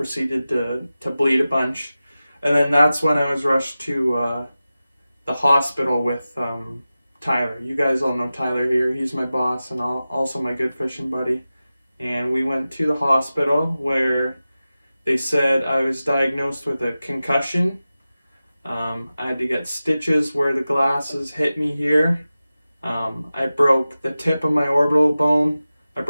to bleed a bunch. And then that's when I was rushed to the hospital with Tyler. You guys all know Tyler here. He's my boss and also my good fishing buddy. And we went to the hospital where they said I was diagnosed with a concussion. I had to get stitches where the glasses hit me here. I broke the tip of my orbital bone. I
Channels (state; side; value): inverted; both; correlation -0.95